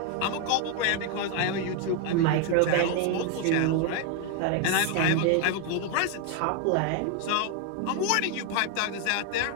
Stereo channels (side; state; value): both; different; correlation 0.01